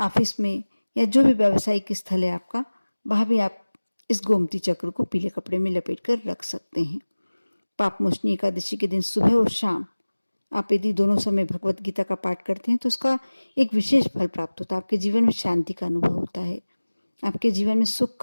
में, या जो भी व्यावसायिक स्थल है आपका, वहाँ भी आप इस गोमती चक्र को पीले कपड़े में लपेट कर रख सकते हैं। पापमोचनी एकादशी के दिन सुबह और शाम आप यदि दोनों समय भगवत गीता का पाठ करते हैं तो उसका एक विशेष फल प्राप्त होता है। आपके जीवन में शांति का अनुभव होता है, आपके जीवन में सुख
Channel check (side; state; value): both; inverted; correlation -1.00